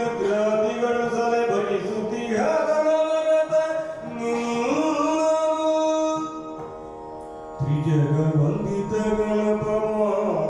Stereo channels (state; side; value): identical; both; correlation 1.00